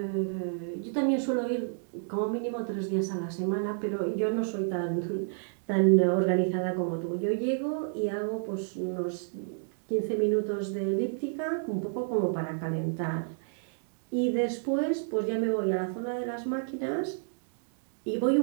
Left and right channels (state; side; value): silent; left; digital silence